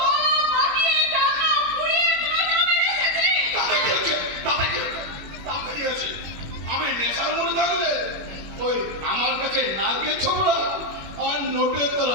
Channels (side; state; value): left; late; 21 ms